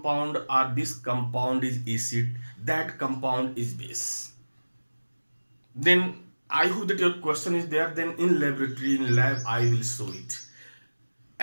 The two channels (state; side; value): inverted; both; correlation -1.00